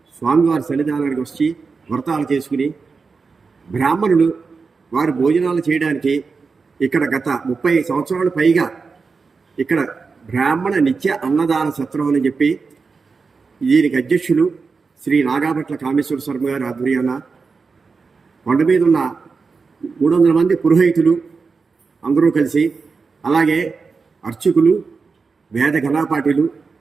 స్వామివారి సన్నిధానానికి వచ్చి వ్రతాలు చేసుకుని బ్రాహ్మణులు వారు భోజనాలు చేయడానికి ఇక్కడ గత 30 సంవత్సరాల పైగా ఇక్కడ బ్రాహ్మణ నిత్య అన్నదాన సత్రం అని చెప్పి దీనికి అధ్యక్షులు శ్రీ నాగాభట్ల కామేశ్వర శర్మ గారి ఆధ్వర్యాన కొండ మీద ఉన్న 300 మంది పురోహితులు అందరూ కలిసి, అలాగే అర్చకులు, వేద ఘనాపాఠులు,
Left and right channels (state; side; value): quieter; left; 4.8 dB